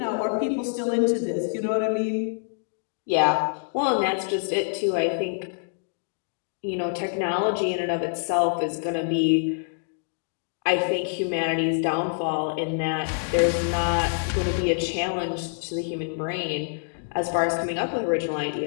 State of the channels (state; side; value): silent; right; digital silence